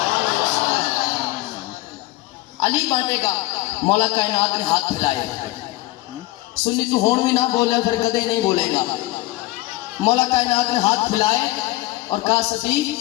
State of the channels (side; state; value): right; quieter; 18.6 dB